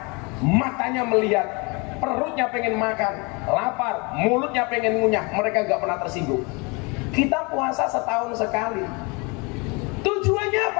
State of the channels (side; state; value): right; quieter; 29.1 dB